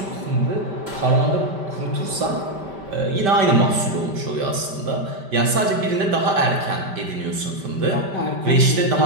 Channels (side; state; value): left; late; 5.1 ms